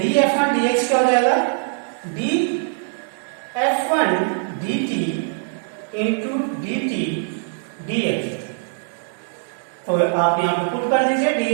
dx क्या हो जाएगा, dF1 dt into dt dx, तो आप यहाँ पे पुट कर दीजिए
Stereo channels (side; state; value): left; silent; digital silence